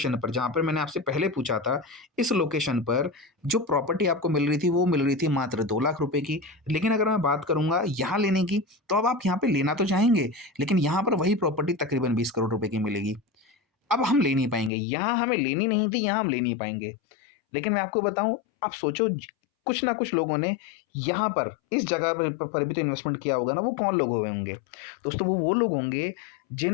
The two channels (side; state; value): right; drops out; at 14.7 s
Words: पर जहाँ पर मैंने आपसे पहले पूछा था, इस लोकेशन पर जो प्रॉपर्टी आपको मिल रही थी वो मिल रही थी मात्र 2 लाख रुपए की। लेकिन अगर मैं बात करूँगा यहाँ लेने की, तो अब आप यहाँ पे लेना तो चाहेंगे, लेकिन यहाँ पर वही प्रॉपर्टी तकरीबन 20 करोड़ रुपए की मिलेगी। अब हम ले नहीं पाएँगे, यहाँ हमें लेनी नहीं थी, यहाँ हम ले नहीं पाएँगे। लेकिन मैं आपको बताऊँ, आप सोचो कुछ ना कुछ लोगों ने यहाँ पर इस जगह पर भी तो इन्वेस्टमेंट किया होगा ना, वो कौन लोग हुए होंगे? दोस्तों वो लोग होंगे